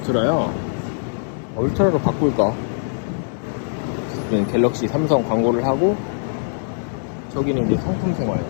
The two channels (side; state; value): right; silent; digital silence